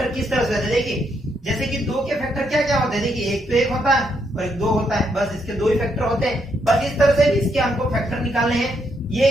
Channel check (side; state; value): both; normal; correlation 0.77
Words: किस तरह से होते हैं। देखिए जैसे कि 2 के फैक्टर क्या क्या होते हैं, देखिए एक तो 1 होता है और एक 2 होता है, बस इसके 2 ही फैक्टर होते हैं। बस इस तरह से इसके हमको फैक्टर निकालने हैं। ये